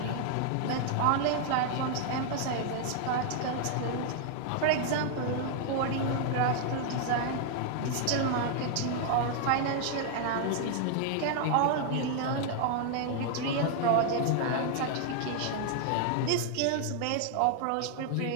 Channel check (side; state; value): both; different; correlation 0.00